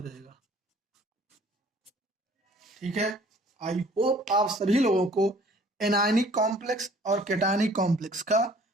जाएगा। ठीक है, आई होप आप सभी लोगों को एनायनिक कॉम्प्लेक्स और कैटायनिक कॉम्प्लेक्स का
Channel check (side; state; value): both; normal; correlation 0.54